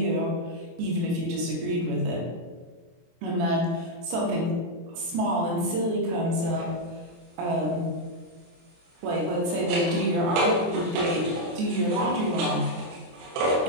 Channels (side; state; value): left; late; 23 ms